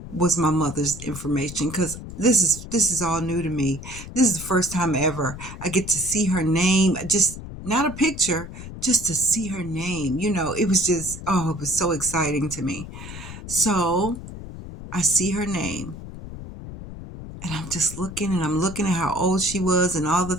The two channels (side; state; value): left; noise; rumble, 12 dB below the sound